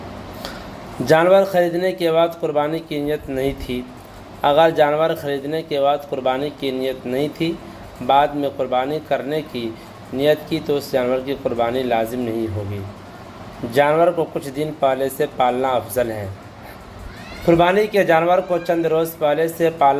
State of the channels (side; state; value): both; identical; correlation 1.00